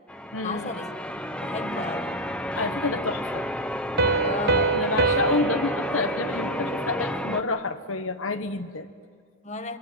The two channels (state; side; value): normal; both; correlation 0.03